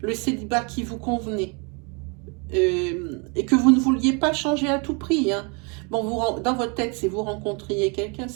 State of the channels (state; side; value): quieter; left; 33.4 dB